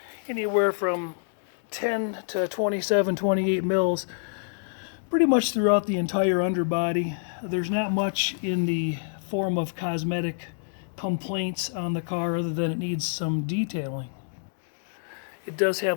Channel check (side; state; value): right; silent; digital silence